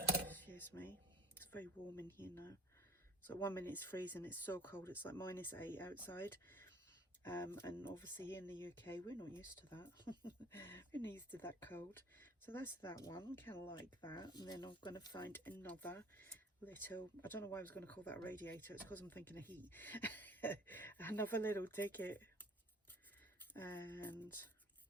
Excuse me. It's very warm in here now. So 1 minute it's freezing, it's so cold, it's like -8 outside. And obviously here in the UK we're not used to that. We're not used to that cold. So that's that one, kind of like that. And then I'm going to find another little, I don't know why I was going to call that a radiator, it's because I'm thinking of heat. Another little ticket. And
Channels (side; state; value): both; normal; correlation 0.49